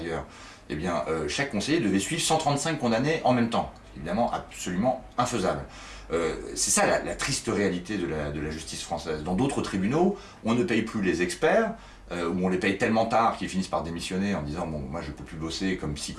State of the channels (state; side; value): identical; both; correlation 1.00